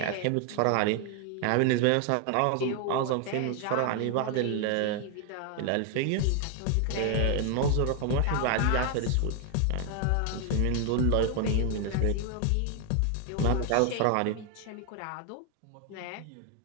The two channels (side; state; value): both; different; correlation 0.00